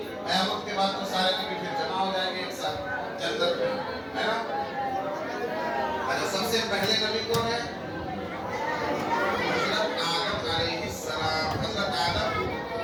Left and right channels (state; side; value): identical; both; correlation 1.00